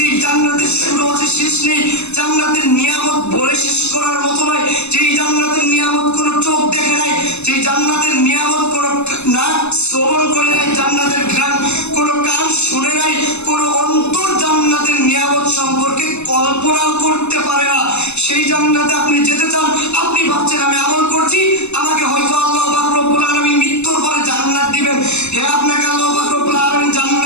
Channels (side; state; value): right; late; 0.81 ms